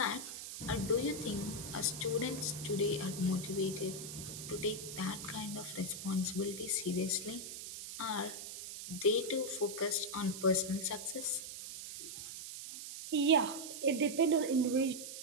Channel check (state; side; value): noise; right; hiss, 9 dB below the sound